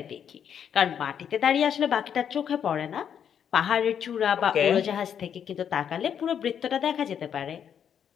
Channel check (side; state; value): right; quieter; 8.4 dB